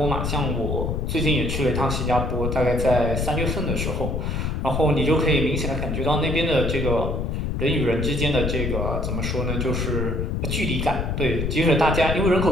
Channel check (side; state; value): left; noise; rumble, 1 dB below the sound